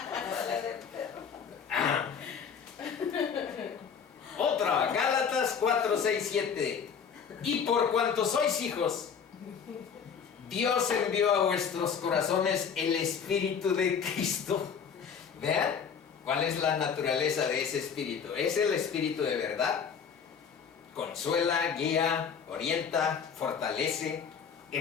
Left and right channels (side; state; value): right; quieter; 6.8 dB